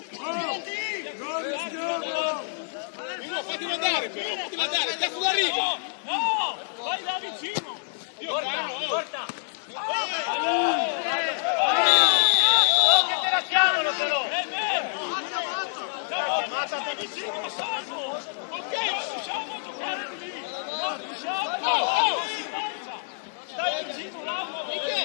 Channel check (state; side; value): silent; right; 60 dB below the other